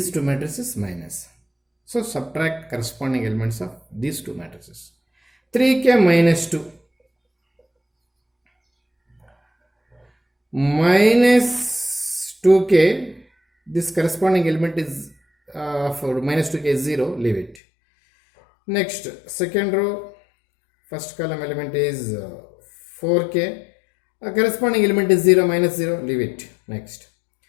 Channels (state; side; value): drops out; right; at 17.6 s